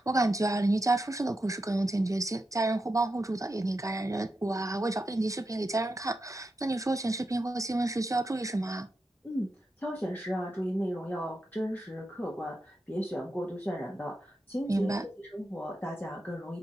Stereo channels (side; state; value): both; normal; correlation 0.87